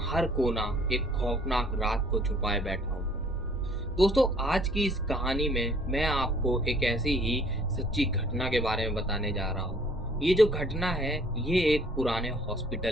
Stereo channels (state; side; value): normal; both; correlation 0.57